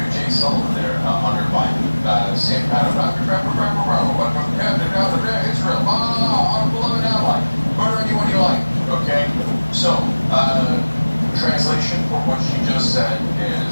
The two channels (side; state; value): both; inverted; correlation -1.00